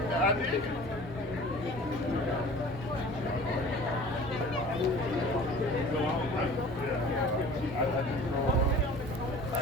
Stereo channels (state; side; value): normal; both; correlation 0.44